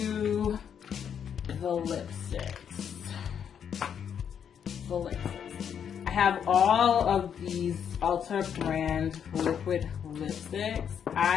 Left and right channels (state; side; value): quieter; right; 8.1 dB